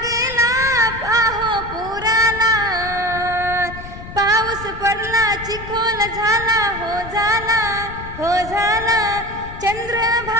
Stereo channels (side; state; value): left; noise; rumble, 13 dB below the sound